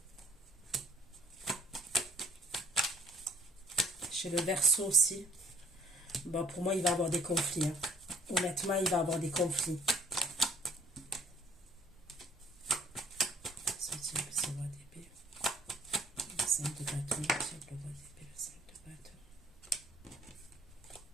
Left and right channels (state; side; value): normal; both; correlation 0.60